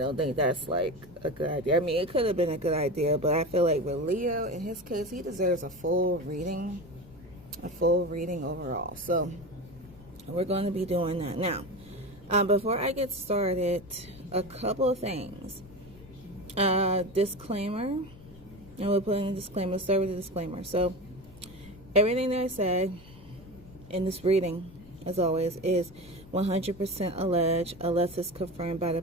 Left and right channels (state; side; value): noise; left; rumble, 20 dB below the sound